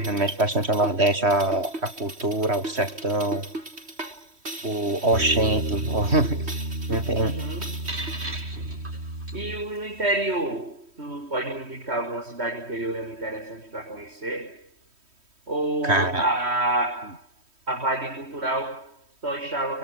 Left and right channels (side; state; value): left; late; 3.1 ms